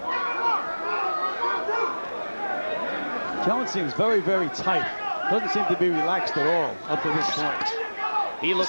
Jones seems very, very tight. Doesn't seem to be relaxed at all up to this point. He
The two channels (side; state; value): both; inverted; correlation -1.00